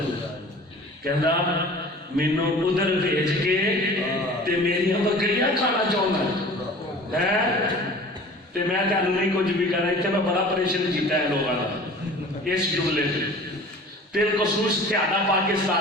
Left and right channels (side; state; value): both; normal; correlation 0.43